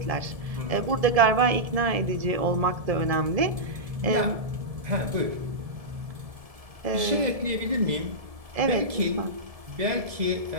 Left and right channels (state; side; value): late; left; 1.7 ms